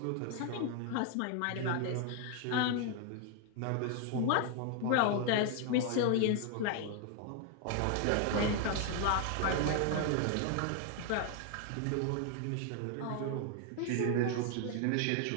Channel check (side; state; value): both; different; correlation 0.00